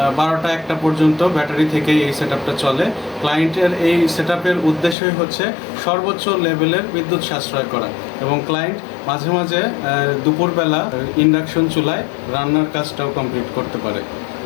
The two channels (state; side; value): drops out; right; at 5.0 s